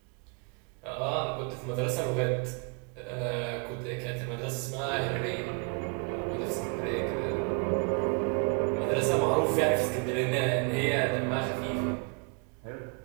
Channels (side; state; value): left; quieter; 36.1 dB